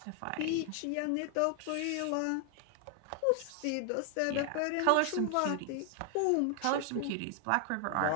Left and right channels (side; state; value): both; different; correlation 0.00